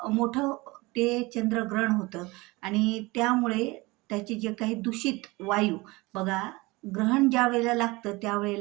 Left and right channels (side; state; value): left; quieter; 23.0 dB